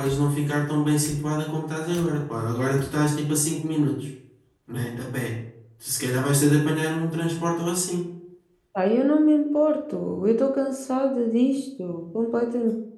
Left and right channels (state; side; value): identical; both; correlation 1.00